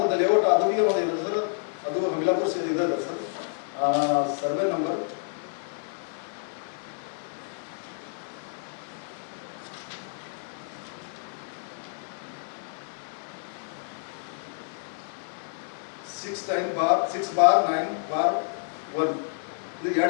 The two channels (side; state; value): right; silent; digital silence